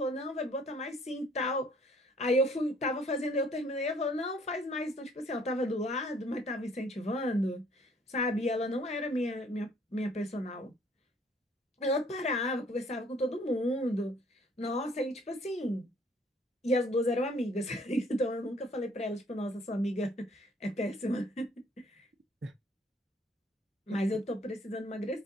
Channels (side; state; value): both; normal; correlation 0.60